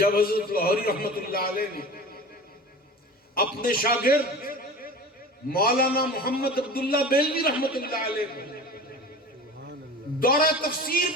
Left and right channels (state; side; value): normal; both; correlation 0.36